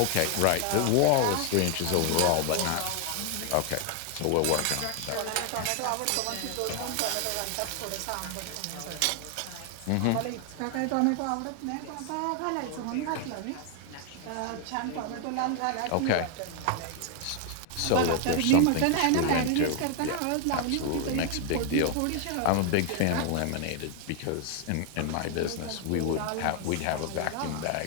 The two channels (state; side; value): different; both; correlation 0.00